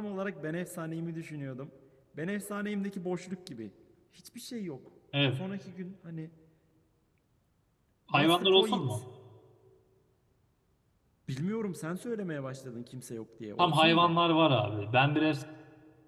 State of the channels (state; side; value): identical; both; correlation 1.00